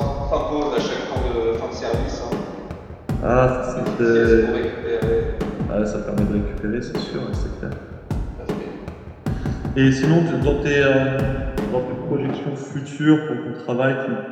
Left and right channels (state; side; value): identical; both; correlation 1.00